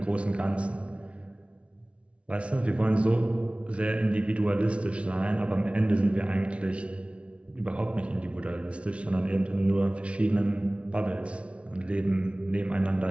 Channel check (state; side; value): late; left; 0.061 ms